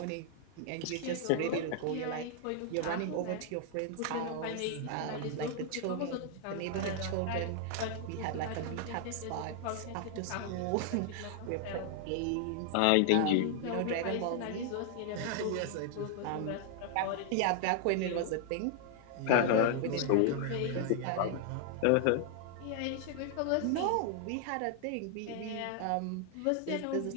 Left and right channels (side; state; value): both; different; correlation 0.00